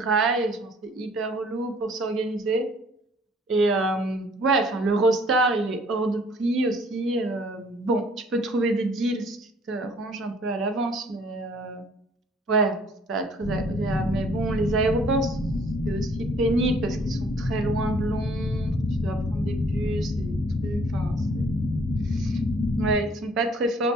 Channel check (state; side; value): normal; both; correlation 0.58